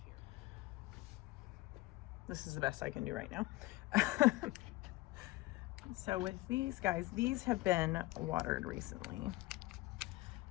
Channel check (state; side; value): quieter; right; 19.7 dB